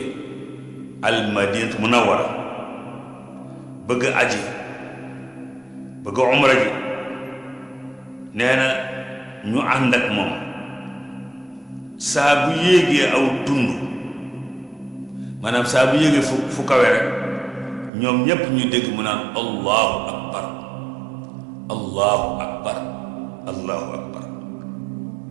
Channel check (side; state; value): left; drops out; at 17.9 s